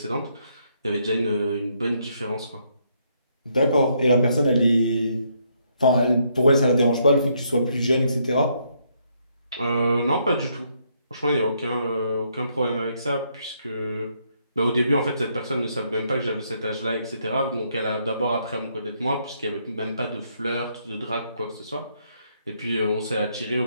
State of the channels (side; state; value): both; inverted; correlation -0.73